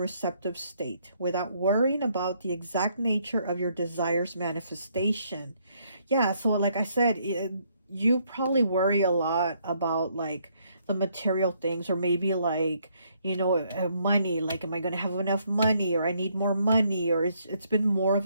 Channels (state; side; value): inverted; both; correlation -0.70